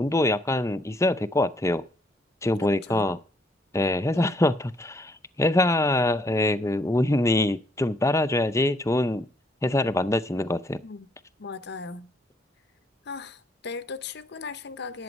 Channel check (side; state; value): both; normal; correlation 0.68